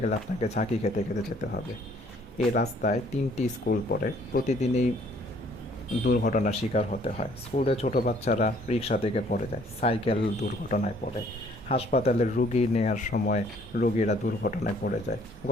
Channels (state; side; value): normal; both; correlation 0.61